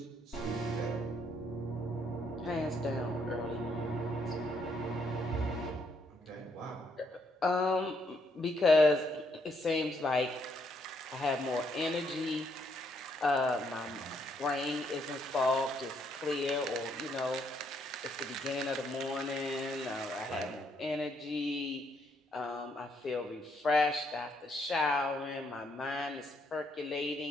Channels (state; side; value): normal; both; correlation 0.72